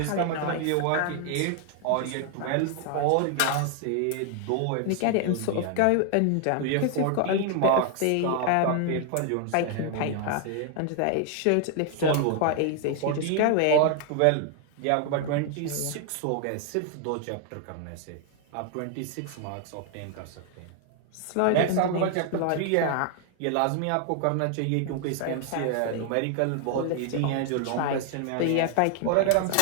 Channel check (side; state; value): both; different; correlation 0.00